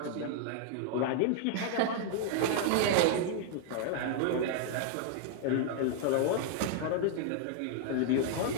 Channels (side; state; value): both; different; correlation 0.00